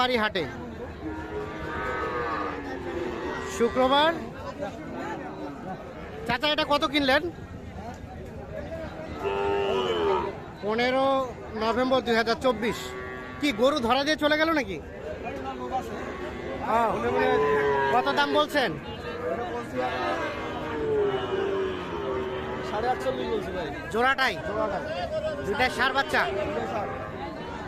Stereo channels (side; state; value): both; identical; correlation 1.00